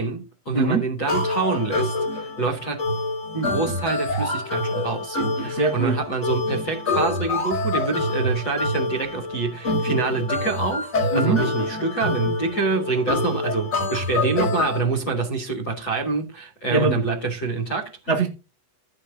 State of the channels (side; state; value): right; late; 8.1 ms